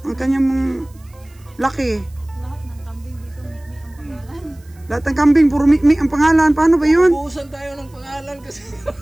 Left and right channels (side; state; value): right; noise; hiss, 30 dB below the sound